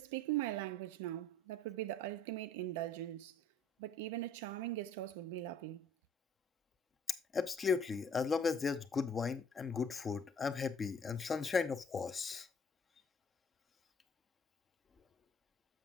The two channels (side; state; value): both; normal; correlation 0.56